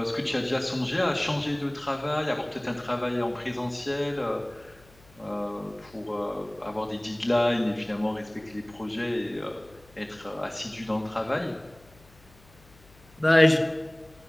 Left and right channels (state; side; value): noise; left; hum, 26 dB below the sound